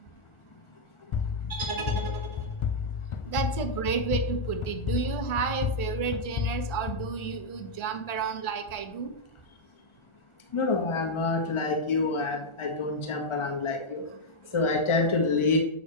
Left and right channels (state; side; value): late; right; 1.4 ms